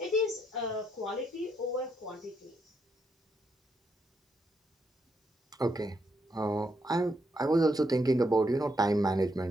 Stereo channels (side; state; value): both; normal; correlation 0.78